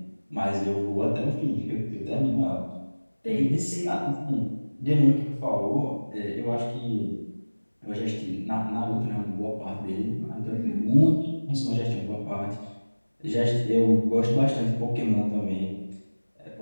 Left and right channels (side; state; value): both; inverted; correlation -1.00